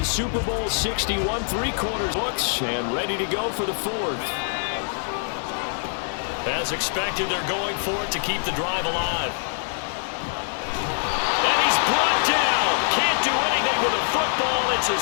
Super Bowl 61, three-quarters books, and ready to go for the fourth. As expected, they're going for it to keep the drive alive. And he's brought down. Can't do anything with a football. It's a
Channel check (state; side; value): silent; right; digital silence